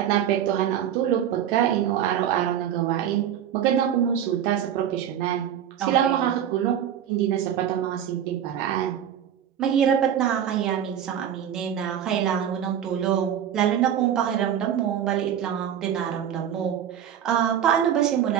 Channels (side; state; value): left; quieter; 9.6 dB